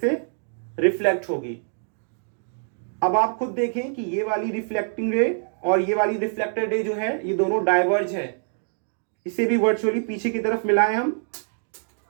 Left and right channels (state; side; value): silent; left; digital silence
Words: रिफ्लेक्ट होगी। अब आप खुद देखें कि ये वाली रिफ्लेक्टिंग रे और ये वाली रिफ्लेक्टेड रे जो है ये दोनों डाइवर्ज है। इसे भी वर्चुअली पीछे की तरफ मिलाएं हम